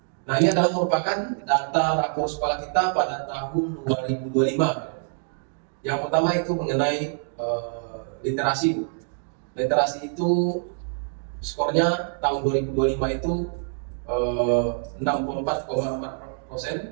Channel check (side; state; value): left; silent; digital silence